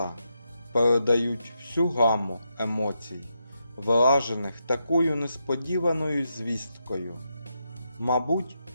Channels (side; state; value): both; inverted; correlation -0.84